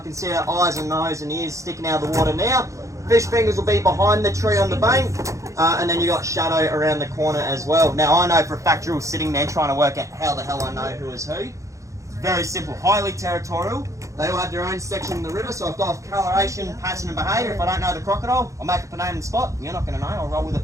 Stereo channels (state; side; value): late; left; 0.15 ms